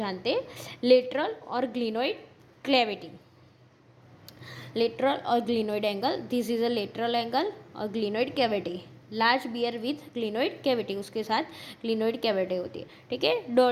हैं। लेटरल और ग्लिनोइड क्लेविटी, लेटरल और glenoid angle, this is a lateral angle और glenoid cavity. Large bear with glenoid cavity, उसके साथ ग्लिनोइड कैविटी होती है। ठीक है,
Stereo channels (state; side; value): identical; both; correlation 1.00